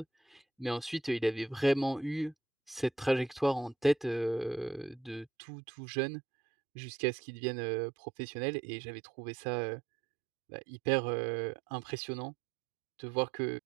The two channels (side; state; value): left; drops out; at 5.2 s